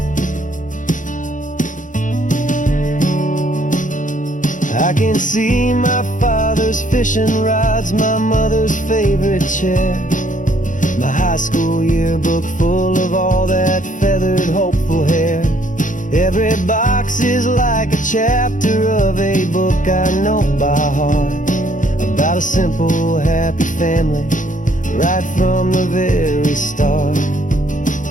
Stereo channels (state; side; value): late; right; 0.37 ms